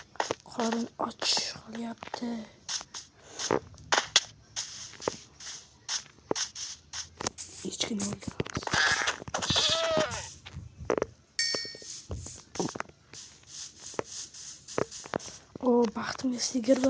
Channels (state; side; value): identical; both; correlation 1.00